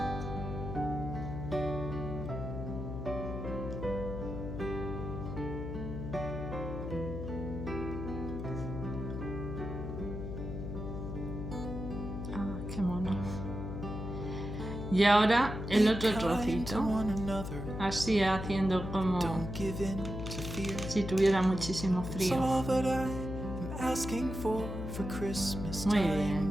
Y ahora el otro trocito, así haciendo como si tuviera muchísimo frío. Muy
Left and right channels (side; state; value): left; noise; hum, 6 dB below the sound